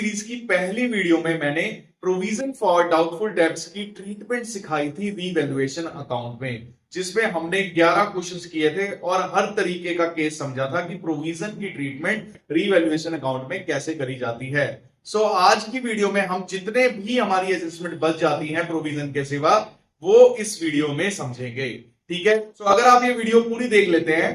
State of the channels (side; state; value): both; identical; correlation 1.00